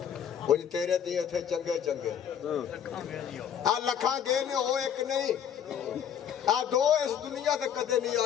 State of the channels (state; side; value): quieter; right; 8.6 dB